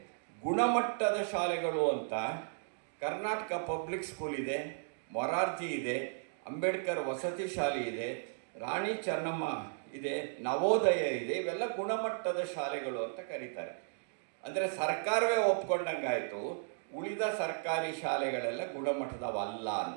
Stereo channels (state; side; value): silent; left; digital silence